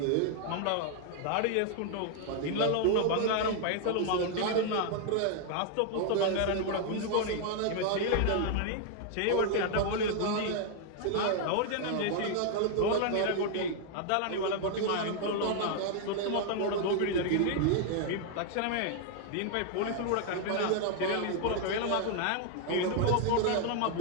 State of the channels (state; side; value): different; both; correlation 0.00